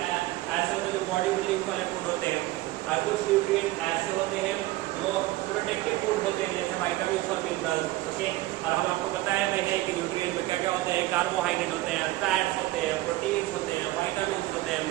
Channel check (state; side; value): quieter; left; 17.5 dB